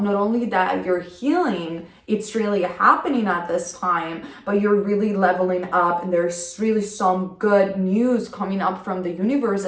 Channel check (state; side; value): identical; both; correlation 1.00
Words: not only that you're healing it's really happening at this time, but you're really leveling up, and there's really some good news coming up from the universe